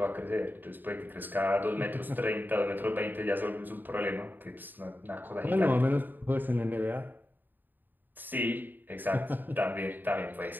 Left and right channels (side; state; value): left; late; 0.090 ms